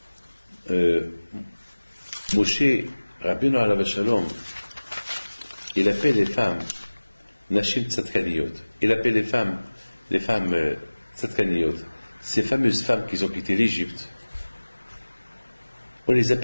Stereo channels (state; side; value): inverted; both; correlation -1.00